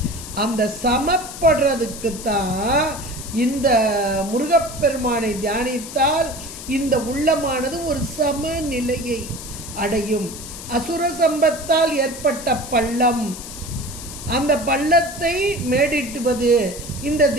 அந்த சமப்படுறதுக்குத்தான் இந்த முருகப்பெருமானை தியானித்தால் இந்த உள்ளமானது ஒரு சமநிலையை அடையும். அசுர சம்பத்தால் ஏற்பட்ட பள்ளம், அந்த பள்ளத்தை மேடிட்டுவது இந்த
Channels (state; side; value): noise; left; hiss, 12 dB below the sound